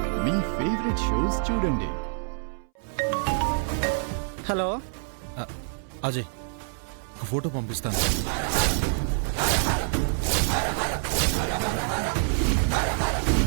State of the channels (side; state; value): left; silent; 60 dB below the other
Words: మీ ఫేవరెట్ షోస్ చూడండి. హలో అజయ్, ఒక ఫోటో పంపిస్తాను.